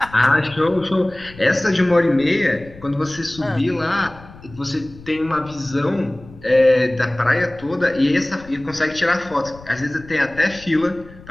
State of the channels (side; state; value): left; noise; rumble, 20 dB below the sound